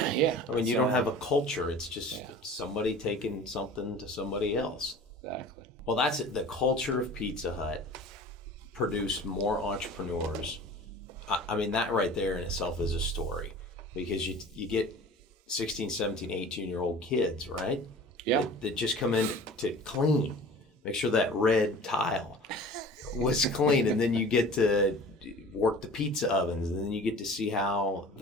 Yeah. I mean, you don't have a culture. It's just somebody taking something to somebody else. Exactly. Well, that's it. The culture of Pizza Hut produced more entrepreneurs. I mean, that right there in itself is a story, because you get 16, 17, 18-year-old kids, right? Yeah. That just come in to clean, make sure that red tile was clean, and then you get to work the pizza ovens, and then you get to see how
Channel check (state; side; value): normal; both; correlation 0.42